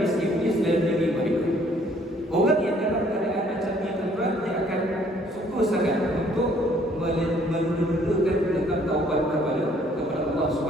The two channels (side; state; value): both; normal; correlation 0.62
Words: iblis dalam diri mereka. Orang yang dalam keadaan macam ni tuan, dia akan suka sangat untuk menunda-nundakan tentang taubat kepada Allah